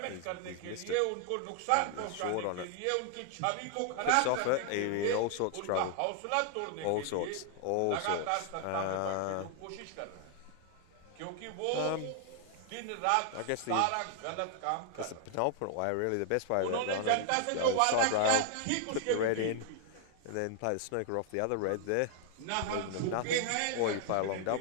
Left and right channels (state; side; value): different; both; correlation 0.00